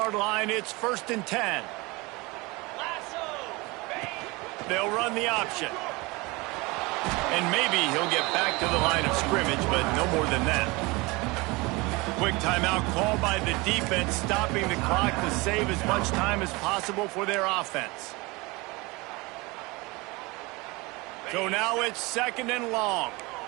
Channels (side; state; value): left; quieter; 24.4 dB